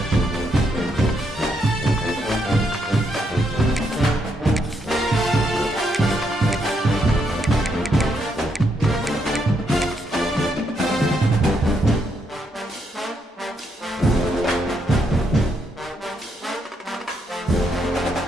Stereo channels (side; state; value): both; normal; correlation 0.77